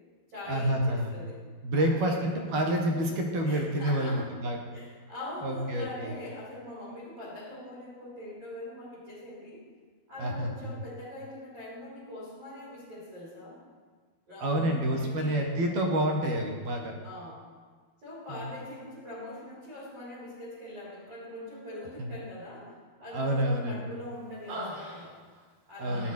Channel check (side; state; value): left; late; 12 ms